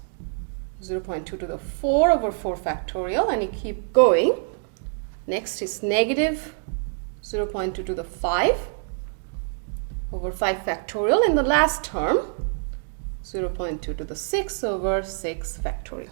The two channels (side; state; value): left; silent; 60 dB below the other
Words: 0.2 to the 4 over 4 factorial, and you keep going. Next is negative 0.2 to the 5 over 5 factorial, and the last term 0.2 to the 6 over 6 factorial.